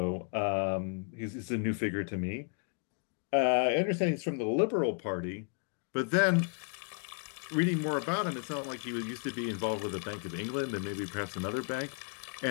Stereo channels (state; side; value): quieter; right; 39.4 dB